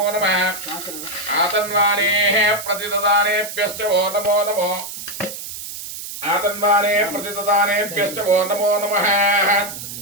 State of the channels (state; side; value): noise; right; hiss, 9 dB below the sound